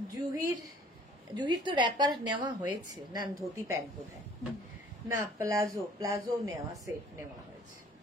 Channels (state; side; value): normal; both; correlation 0.54